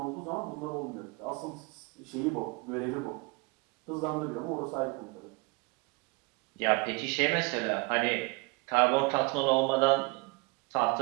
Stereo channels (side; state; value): left; quieter; 27.5 dB